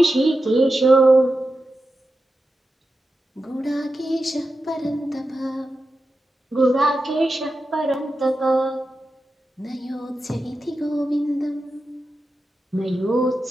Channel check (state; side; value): normal; both; correlation 0.91